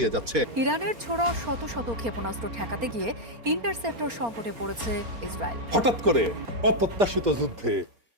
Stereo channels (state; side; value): late; left; 4.3 ms